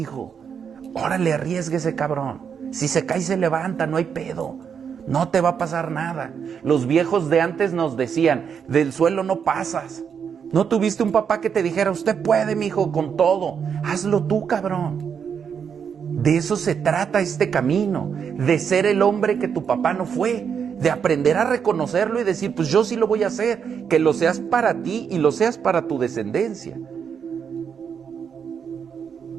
Órale, arriésguese, cabrón. Si se cae, se levanta, no hay pedo. No te va a pasar nada. Los viejos de antes nos decían, del suelo no pasas. ¿No tuviste un papá que te dijera, usted puede, mijo, con todo? Hazlo tú, cabrón. De eso se trata este camino, de ser el hombre que tu papá no fue, de aprender a reconocerlo y decir, pues yo sí lo voy a hacer, que lo seas para ti y lo seas para tu descendencia.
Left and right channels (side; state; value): left; quieter; 7.1 dB